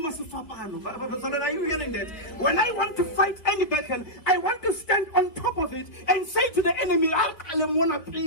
you hearing that? When I want to fight any battle, I want to stand on top of it and say to the enemy,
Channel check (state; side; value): late; right; 3.2 ms